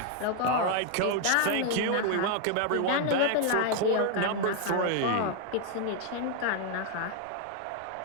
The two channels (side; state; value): both; different; correlation 0.00